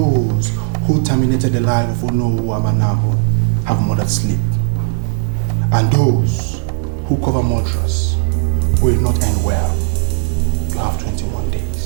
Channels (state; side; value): silent; left; 69 dB below the other